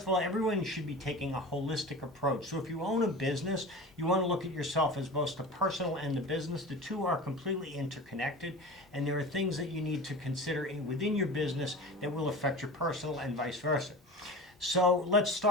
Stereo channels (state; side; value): normal; both; correlation 0.33